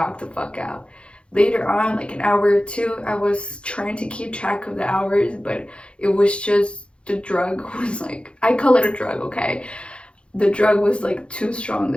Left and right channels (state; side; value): late; right; 0.058 ms